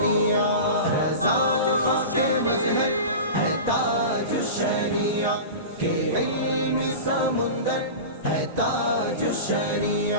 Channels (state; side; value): inverted; both; correlation -0.30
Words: رضا خاک مظہر ہے تاج الشریعہ کہ علمی سمندر ہے تاج